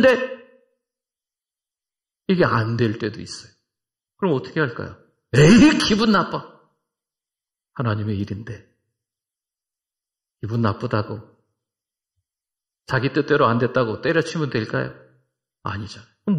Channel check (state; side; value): identical; both; correlation 1.00